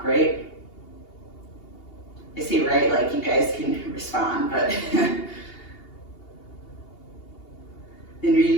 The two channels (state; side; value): late; right; 2.8 ms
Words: right? I say right like you guys can respond, but. Then